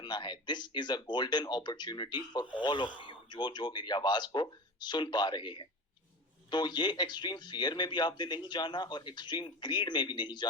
है। This is a golden opportunity for all of you जो मेरी आवाज को सुन पा रहे हैं। तो ये एक्सट्रीम फियर में भी आपने नहीं जाना और एक्सट्रीम ग्रीड में भी नहीं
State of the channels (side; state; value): both; normal; correlation 0.30